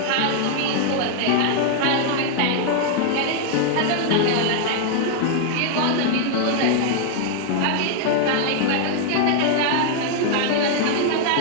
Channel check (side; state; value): both; different; correlation 0.00